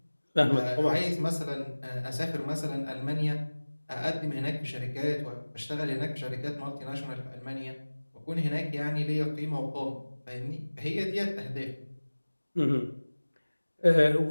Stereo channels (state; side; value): inverted; both; correlation -1.00